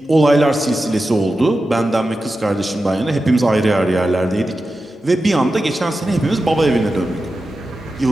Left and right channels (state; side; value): normal; both; correlation 0.92